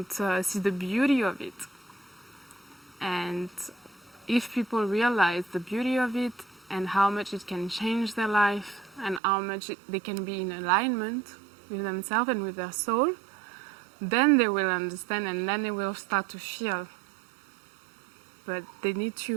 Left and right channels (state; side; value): drops out; left; at 9.2 s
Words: see the beauty of it. And if people realize the beauty of it and how much it can change their life and how much they can be in alignment with themselves and with their soul, then they will understand, and then they will start to feel. But they need